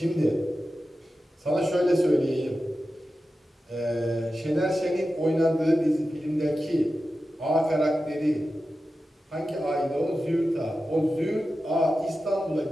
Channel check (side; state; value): both; normal; correlation 0.93